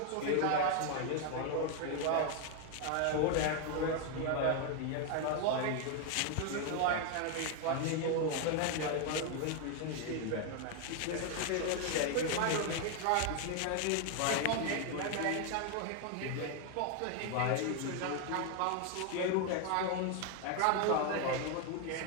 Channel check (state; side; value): different; both; correlation 0.01